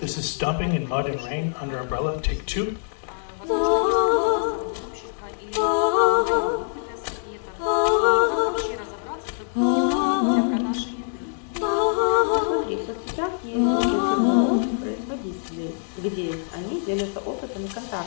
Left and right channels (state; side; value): silent; right; digital silence